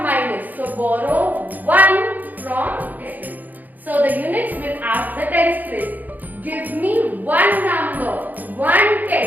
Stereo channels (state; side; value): late; left; 0.083 ms